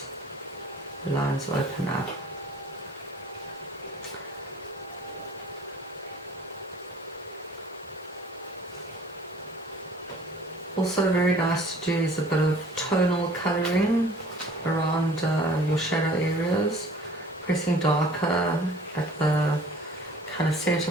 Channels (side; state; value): both; normal; correlation 0.51